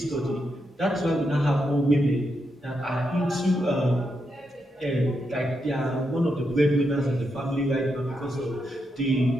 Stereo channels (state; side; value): normal; both; correlation 0.83